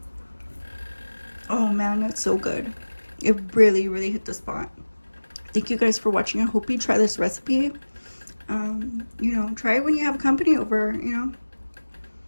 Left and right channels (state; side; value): inverted; both; correlation -1.00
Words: Oh man, that's so good. It really, really hit the spot. Thank you guys for watching. I hope you try this recipe. You know, try it when you have company over, you know.